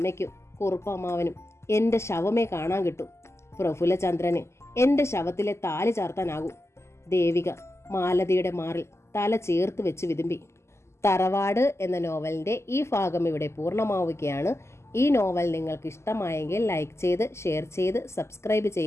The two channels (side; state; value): right; late; 0.13 ms